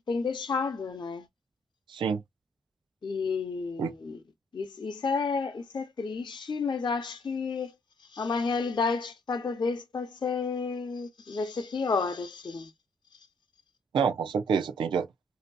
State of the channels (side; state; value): both; normal; correlation 0.65